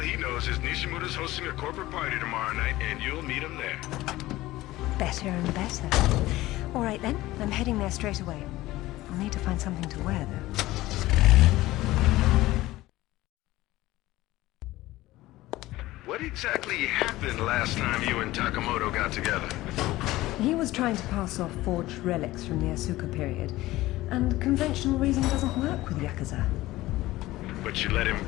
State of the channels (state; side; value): quieter; right; 17.4 dB